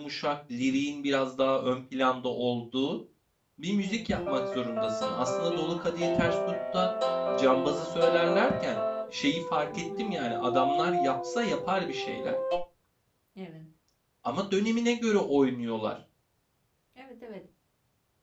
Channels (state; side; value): identical; both; correlation 1.00